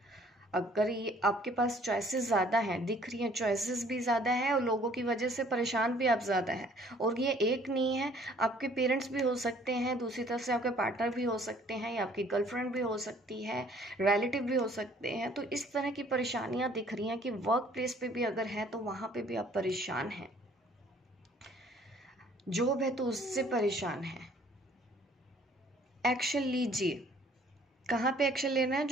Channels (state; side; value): normal; both; correlation 0.57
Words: अगर ये आपके पास चॉइसेस ज़्यादा हैं, दिख रही हैं चॉइसेस भी ज़्यादा है और लोगों की वजह से परेशान भी आप ज़्यादा हैं, और ये एक नहीं है, आपके पेरेंट्स भी हो सकते हैं, दूसरी तरफ से आपके पार्टनर भी हो सकते हैं, या आपकी गर्लफ्रेंड भी हो सकती है, रिलेटिव भी हो सकते हैं। तो इस तरह की परेशानियाँ दिख रही हैं कि वर्क प्लेस पे भी अगर है तो वहाँ पे भी आप परेशान हैं, जॉब है तो उससे परेशान हैं। एक्शन लीजिए। कहाँ पे एक्शन लेना है?